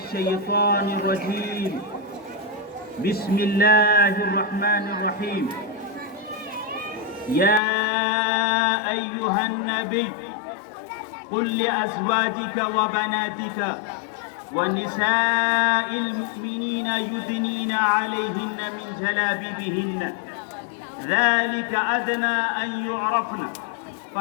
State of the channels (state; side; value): drops out; right; at 7.6 s